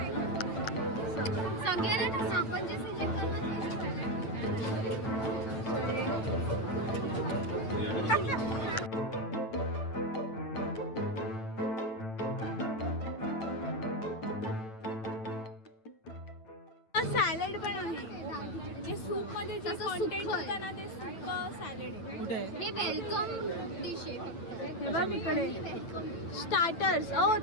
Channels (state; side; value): late; right; 9.0 ms